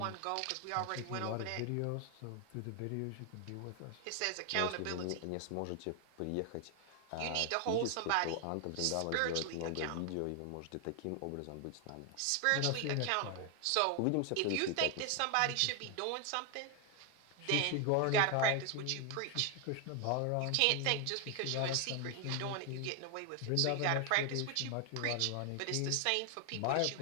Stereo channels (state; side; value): different; both; correlation 0.01